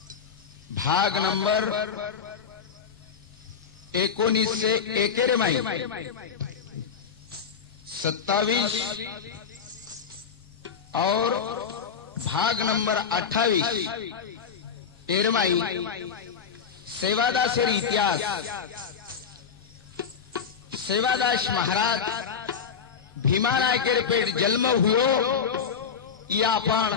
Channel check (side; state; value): right; quieter; 6.6 dB